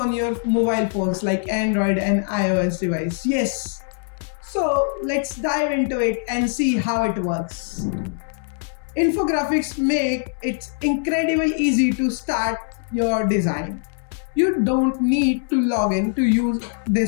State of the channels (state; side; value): silent; right; digital silence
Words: your mobile phones like Android and iOS device. Yes. So let's dive into it and see how it works. Infographics make it incredibly easy to start your design. You don't need to log in to use